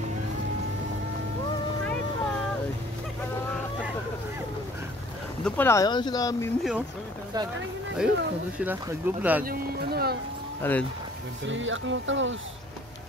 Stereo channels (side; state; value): both; normal; correlation 0.55